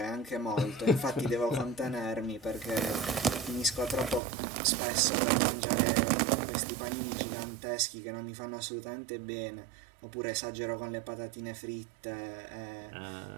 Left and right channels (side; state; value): left; drops out; at 4.2 s